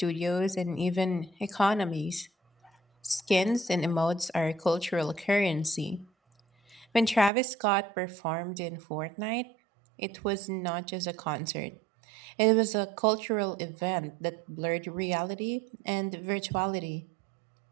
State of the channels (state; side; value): drops out; left; at 7.3 s